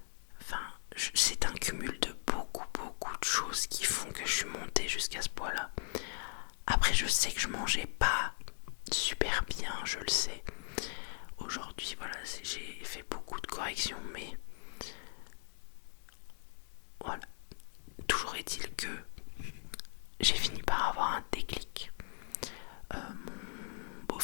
c'est un cumul de beaucoup de choses qui font que je suis montée jusqu'à ce poids-là. Après, je sais que je mangeais pas super bien, je le sais. Aujourd'hui, voilà, j'ai fait beaucoup de corrections, mais voilà. Toujours est-il que j'ai fini par avoir un déclic. Mon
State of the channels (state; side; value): silent; right; 52 dB below the other